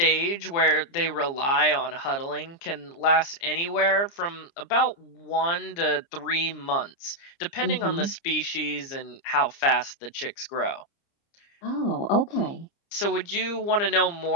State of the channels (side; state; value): right; late; 29 ms